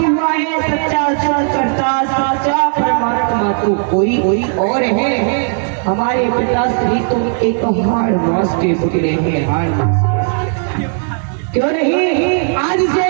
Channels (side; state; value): left; silent; 57 dB below the other